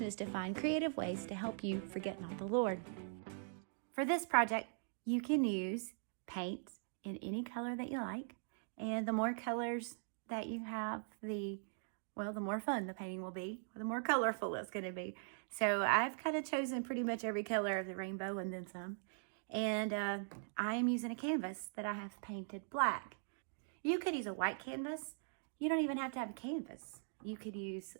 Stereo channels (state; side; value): silent; left; digital silence